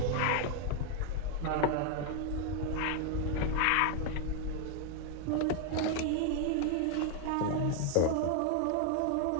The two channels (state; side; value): different; both; correlation 0.01